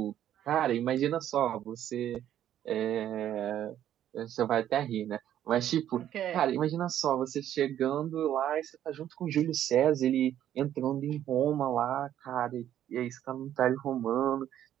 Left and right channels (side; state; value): left; quieter; 11.1 dB